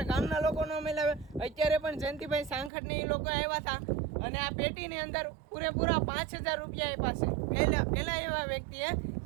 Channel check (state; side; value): drops out; left; at 2.7 s